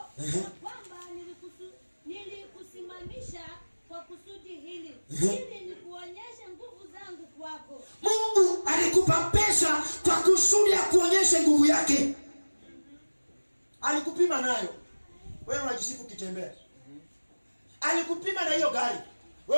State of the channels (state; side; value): inverted; both; correlation -1.00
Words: kwamba nilikusimamisha kwa kusudi hili, ili nikuonyeshe nguvu zangu kwako. Mungu alikupa pesa kwa kusudi ya kuonyesha nguvu yake. Alikupima nayo, wewe unajisifu kitembea. Alikupima na hiyo gari,